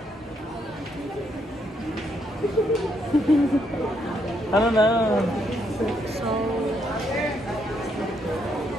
Ano na? So...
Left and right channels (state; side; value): normal; both; correlation 0.75